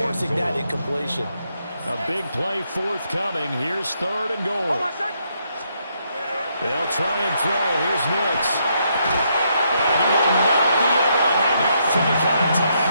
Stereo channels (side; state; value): both; inverted; correlation -0.76